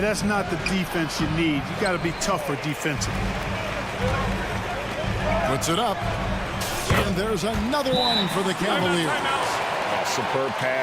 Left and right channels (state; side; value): identical; both; correlation 1.00